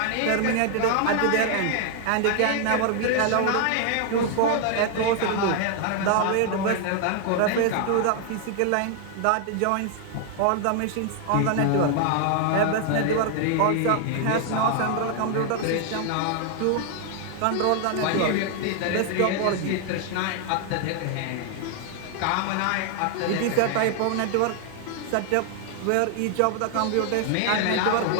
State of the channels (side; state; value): both; different; correlation 0.00